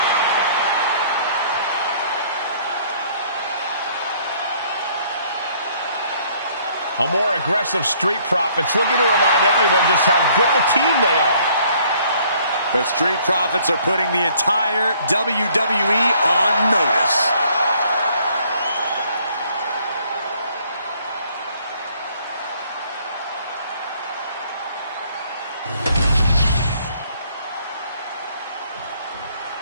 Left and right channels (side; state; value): both; inverted; correlation -0.62